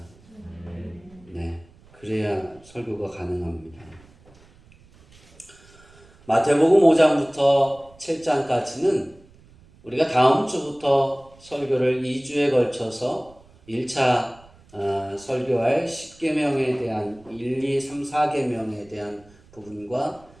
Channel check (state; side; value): noise; right; rumble, 26 dB below the sound